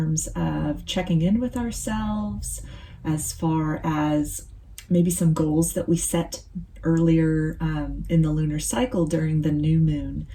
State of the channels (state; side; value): identical; both; correlation 1.00